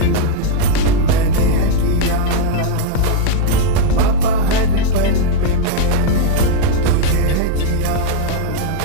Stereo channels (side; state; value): both; different; correlation 0.00